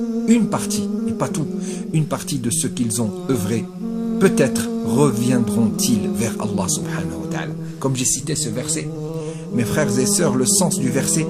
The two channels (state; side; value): identical; both; correlation 1.00